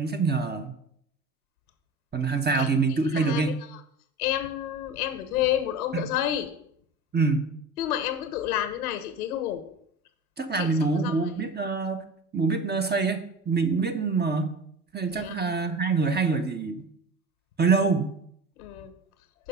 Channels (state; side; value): normal; both; correlation 0.33